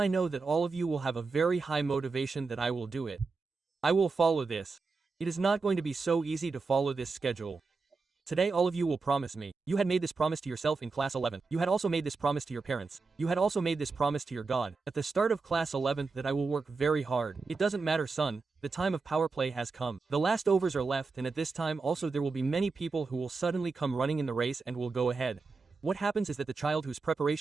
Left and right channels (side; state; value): left; quieter; 4.3 dB